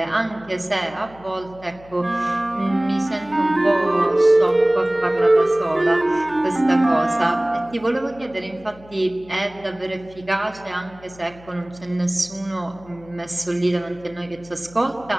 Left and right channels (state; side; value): noise; left; hum, 23 dB below the sound